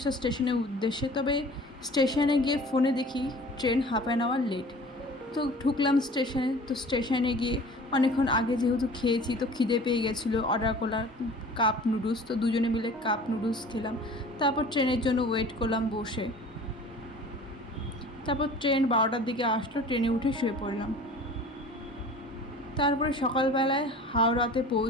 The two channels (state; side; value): normal; both; correlation 0.44